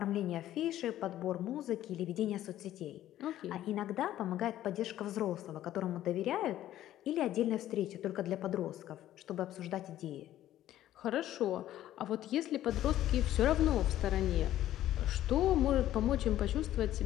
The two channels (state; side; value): quieter; right; 13.0 dB